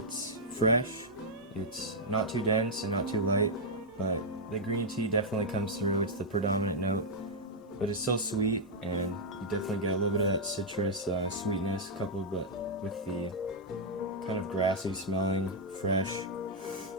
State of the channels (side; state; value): both; normal; correlation -0.05